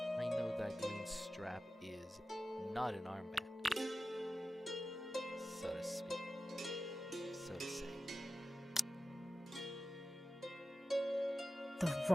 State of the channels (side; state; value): both; normal; correlation 0.94